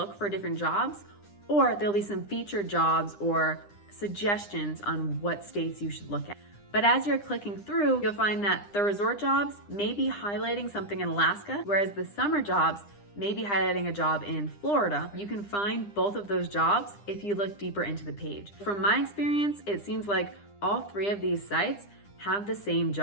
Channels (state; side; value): late; right; 9.9 ms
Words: for different jobs, or there'll be some featured jobs or suggestions on what states you should look at. But as you're clicking through, you'll find that the resort jobs may be highlighting something in Alaska, whereas the summer jobs may be highlighting a job in Florida. You can find both of those jobs if you look deeper into the page. From my experience, it seems like all 3 of these sites have the same